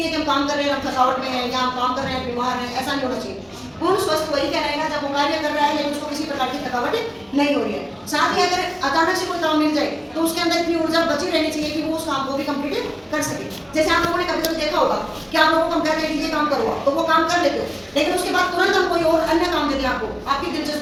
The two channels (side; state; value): both; identical; correlation 1.00